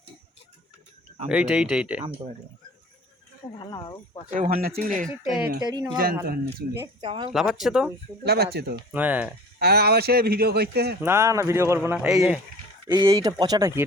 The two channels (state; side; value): normal; both; correlation 0.42